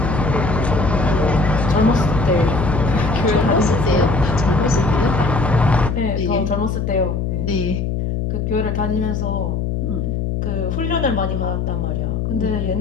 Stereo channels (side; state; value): left; noise; hum, 1 dB below the sound